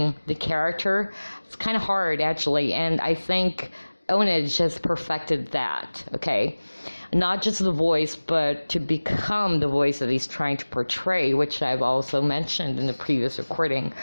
the character. It's kind of hard, actually, and I think Ownage has perfected that, okay? Not just the voice, but to become the voice that he's trying to portray, which I've also mentioned in the previous recording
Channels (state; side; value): inverted; both; correlation -1.00